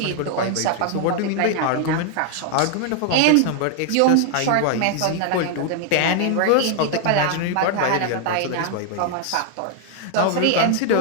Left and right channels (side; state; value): both; different; correlation 0.00